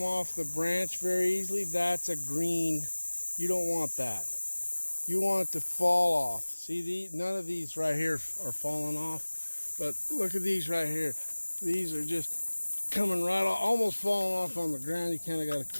off the branch very easily? That's a green. You don't want that. You want it to fall off. See, none of these right here are falling off, but look at these right here. These are just coming right off, almost falling off on the ground. You kind of got to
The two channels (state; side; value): inverted; both; correlation -1.00